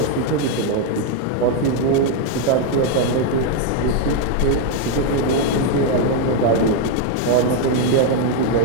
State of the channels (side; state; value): both; different; correlation 0.01